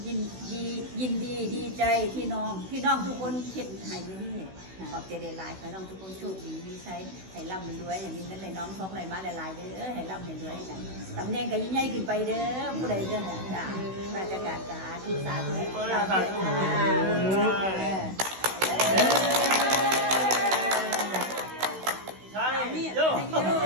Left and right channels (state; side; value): late; left; 16 ms